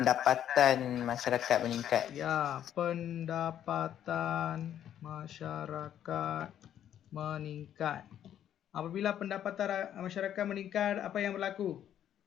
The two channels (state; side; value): quieter; right; 10.4 dB